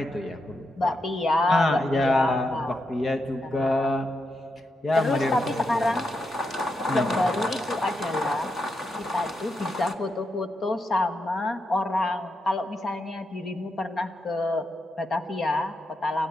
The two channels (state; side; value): normal; both; correlation 0.84